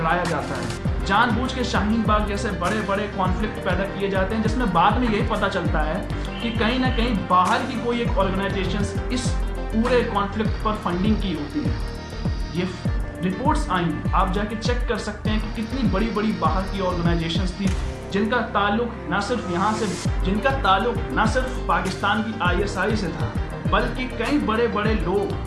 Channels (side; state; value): both; identical; correlation 1.00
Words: जाता है, जानबूझ के शाहीन बाग जैसे बड़े बड़े कॉन्फ्लिक्ट पैदा किए जाते हैं, जिसमें बाद में यही पता चलता है कि कहीं ना कहीं बाहर की कोई एक ऑर्गेनाइजेशन इस पूरे कॉन्फ्लिक्ट पर फंडिंग की होती है। ये रिपोर्ट्स आई हैं, आप जाके चेक कर सकते हैं कि कितनी बड़ी बड़ी बाहर की ऑर्गेनाइजेशंस थी जिनका ताल्लुक ना सिर्फ पाकिस्तान की ISI से था, बल्कि कई बड़े बड़े